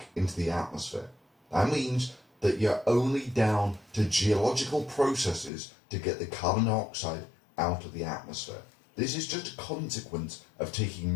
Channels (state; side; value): drops out; right; at 5.5 s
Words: into the atmosphere. That means that you're only down to geological processes to get the carbon dioxide out of the atmosphere. This is just a consequence of